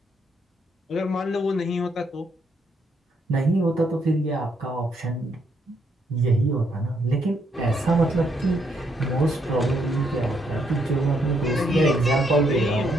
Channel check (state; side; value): normal; both; correlation 0.74